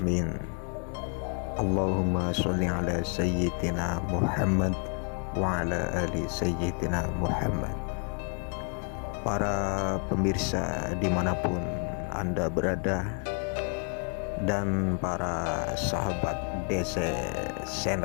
Allahumma sholli ala sayyidina Muhammad wa ala ali sayyidina Muhammad. Para pemirsa dimanapun Anda berada, dan para sahabat DC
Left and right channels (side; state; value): right; quieter; 38.4 dB